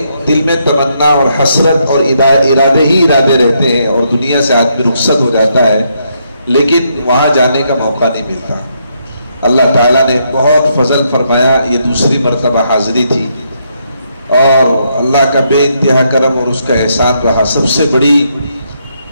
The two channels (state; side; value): inverted; both; correlation -0.76